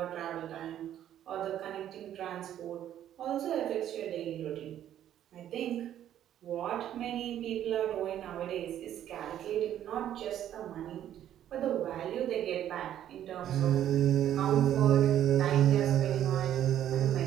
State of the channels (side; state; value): left; quieter; 11.1 dB